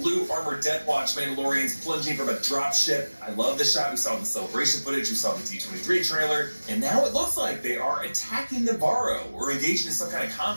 armored Death Watch Mandalorians plunging from a dropship. I love the shot we saw in the celebration footage, we saw in the D23 trailer, and now it looks like they are attacking Navarro, or engaging in some kind of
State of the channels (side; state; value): both; inverted; correlation -1.00